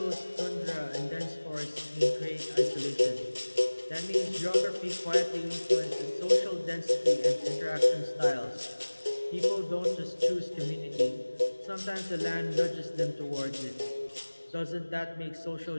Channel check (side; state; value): both; inverted; correlation -1.00